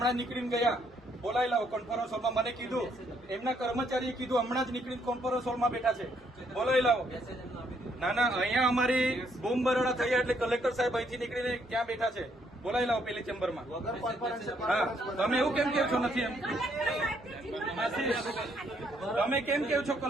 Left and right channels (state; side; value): normal; both; correlation 0.71